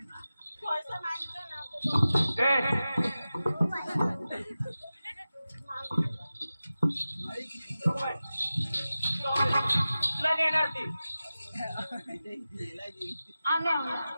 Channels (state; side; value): inverted; both; correlation -0.95